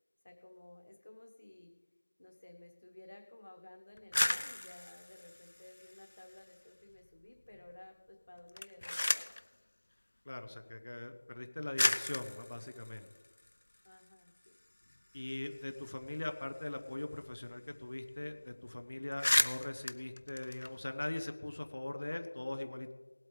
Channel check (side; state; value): both; inverted; correlation -1.00